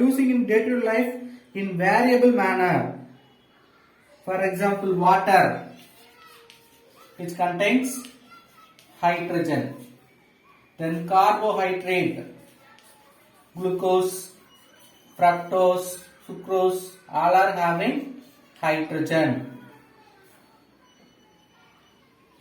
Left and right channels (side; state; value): both; identical; correlation 1.00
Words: in day-to-day life in variable manner. For example, water, which contains hydrogen. Then carbohydrate, glucose, fructose, sucrose, all are having hydrogen.